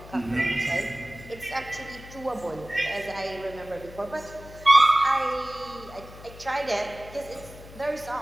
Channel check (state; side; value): noise; left; hum, 17 dB below the sound